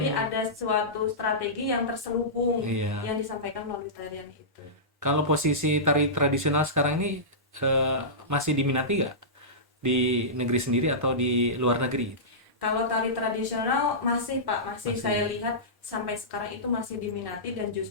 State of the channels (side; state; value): both; normal; correlation -0.18